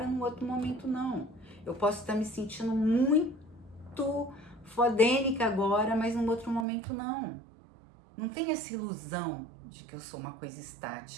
no outro momento não. Eu posso estar me sentindo muito fodênica agora, mas no outro momento não. Não tem essa ilusão de que eu sou uma coisa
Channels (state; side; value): drops out; left; at 6.7 s